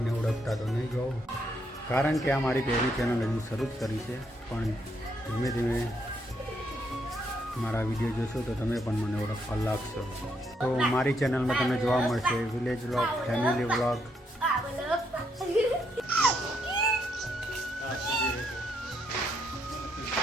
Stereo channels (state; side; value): normal; both; correlation 0.76